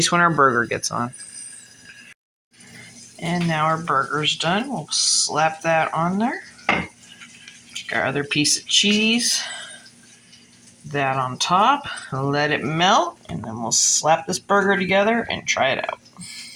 when our burger gets on. And now our burger's done. We'll slap that on there. Take our other piece of cheese, that on top, let it melt, and then we'll slap this burger together and try it out.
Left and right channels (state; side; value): identical; both; correlation 1.00